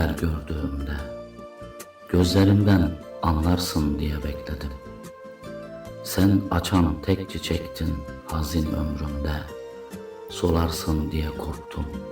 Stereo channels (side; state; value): both; identical; correlation 1.00